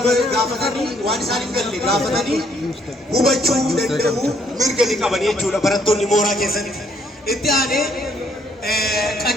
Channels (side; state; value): both; normal; correlation 0.68